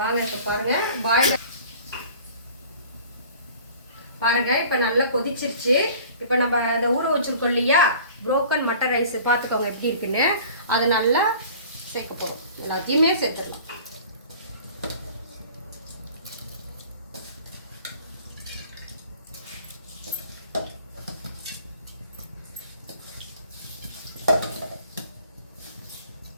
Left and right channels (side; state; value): both; inverted; correlation -0.46